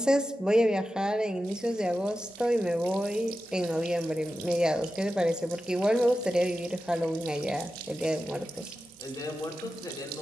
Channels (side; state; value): both; normal; correlation 0.92